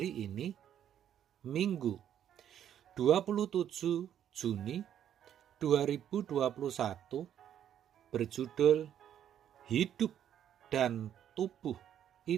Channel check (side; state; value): left; quieter; 10.1 dB